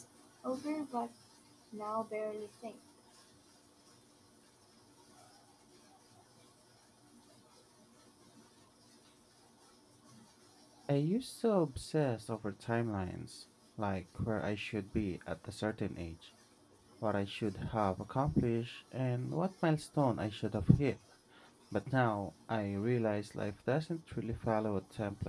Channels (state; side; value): identical; both; correlation 1.00